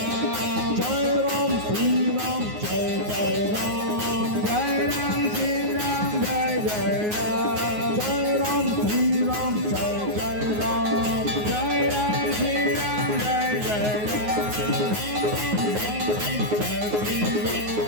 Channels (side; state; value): left; late; 9.5 ms